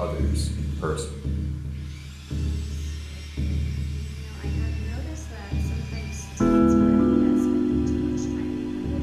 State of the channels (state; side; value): identical; both; correlation 1.00